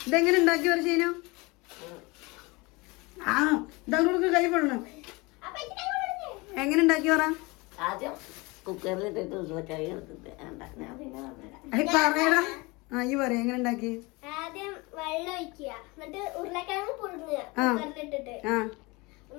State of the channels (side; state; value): right; quieter; 25.1 dB